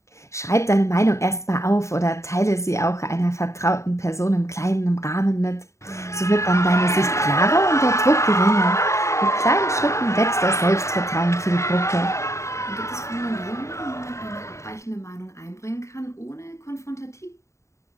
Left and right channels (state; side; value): late; right; 0.14 ms